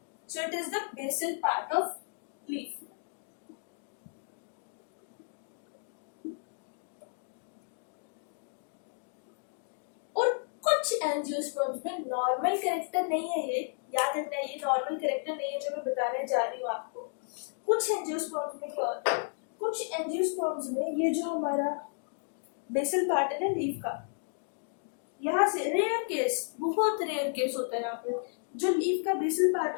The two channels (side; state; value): right; silent; 56 dB below the other